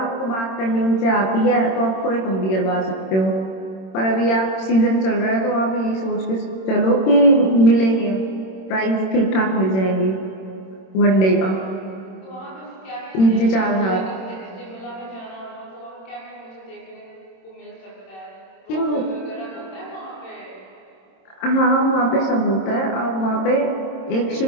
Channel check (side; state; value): right; late; 26 ms